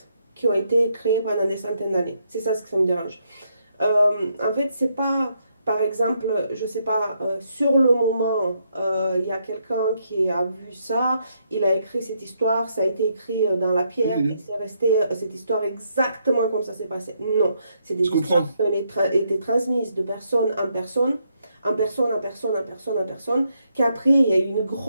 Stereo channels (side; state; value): both; inverted; correlation -0.76